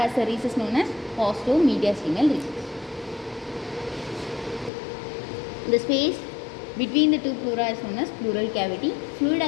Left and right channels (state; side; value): drops out; right; at 4.7 s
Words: has a recess known as costomediastinal recess. The space between the two pleura is known as pleural cavity. Fluid